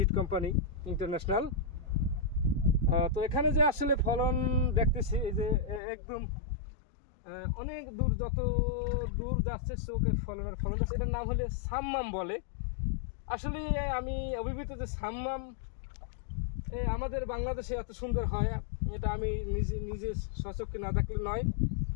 কোম্পানি ইন্টারন্যাশনাল। তো এখানে যে আসলে ফলন দেখতেছি, এই যে একদম অনেক দূর, যত দূর যাচ্ছে চোখের ফলন যাচ্ছে। এটার নাম হলে সাম্মাম বলে। আসলে আমি অভিভূত যে সাম্মাম আমাদের বাংলাদেশে এত সুন্দর হয়, এটা আমি নিজে সচক্ষে না দেখলে নয়।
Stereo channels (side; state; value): right; drops out; at 5.8 s